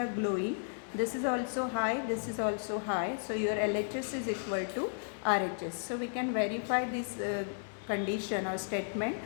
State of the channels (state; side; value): silent; right; digital silence